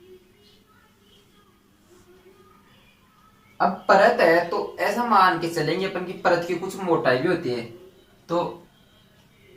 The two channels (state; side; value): identical; both; correlation 1.00